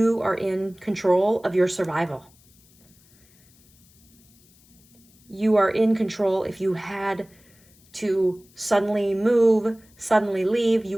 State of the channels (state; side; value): noise; left; hiss, 30 dB below the sound